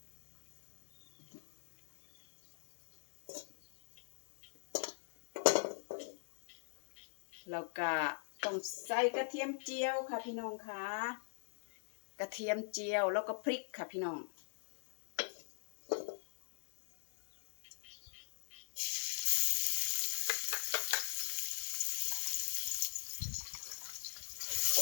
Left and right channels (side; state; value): right; silent; digital silence